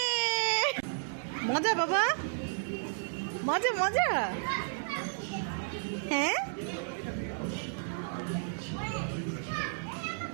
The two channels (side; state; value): left; silent; digital silence